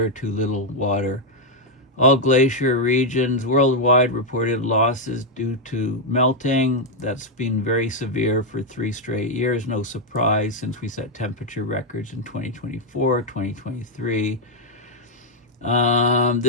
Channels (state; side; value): normal; both; correlation 0.00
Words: too little water. All glacier regions worldwide reported losses due to melting. That's been very severe for 3 straight years. No surprise, since we set temperature records in 2024, 2023.